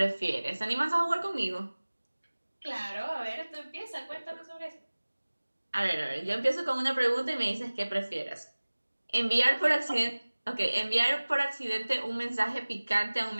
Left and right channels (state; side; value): inverted; both; correlation -1.00